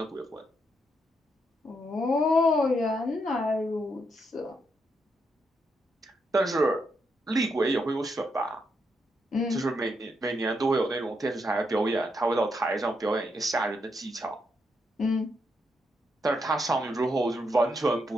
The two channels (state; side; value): normal; both; correlation 0.80